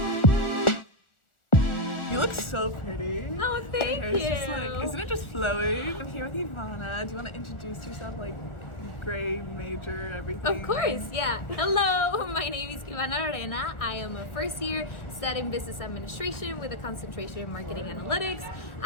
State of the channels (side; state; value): right; late; 1.4 ms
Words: You look so pretty. Oh, thank you. Isn't it just flowing? I'm here with Ivana. Do you want to introduce yourself, like grade, major, everything? Of course, yeah. Hello, my name is Ivana Arena. I am a first year studying business administration with a concentration in marketing analytics.